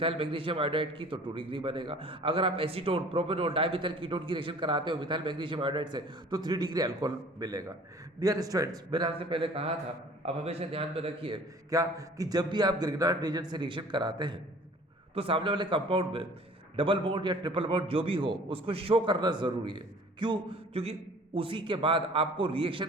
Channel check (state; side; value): normal; both; correlation 0.49